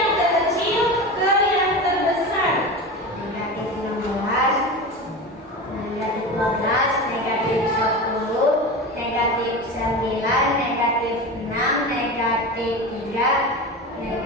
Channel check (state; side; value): normal; both; correlation 0.27